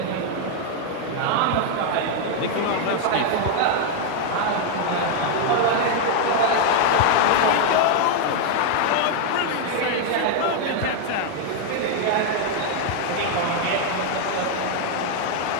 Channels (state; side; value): different; both; correlation 0.00